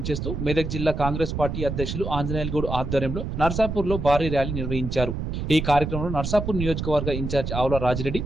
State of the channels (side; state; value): right; noise; rumble, 4 dB below the sound